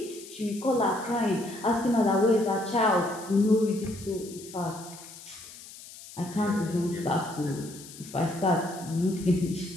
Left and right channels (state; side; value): noise; left; hiss, 16 dB below the sound